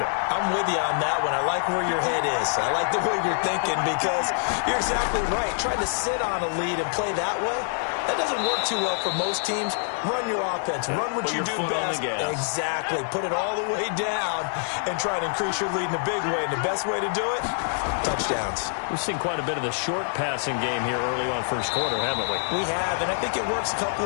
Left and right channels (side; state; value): right; silent; 61 dB below the other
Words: I'm with you on that one. I like where your head is. I like the way you're thinking because you're exactly right. Trying to sit on a lead and play that way, that doesn't work too well for most teams. Run your offense. Run what you do best. Exactly. Put it all the way down and try to increase your lead in a big way. And the best way to do it, touchdowns. We've seen quite a bit of the short passing game here early on first quarter, haven't we? We have, and I think it works a couple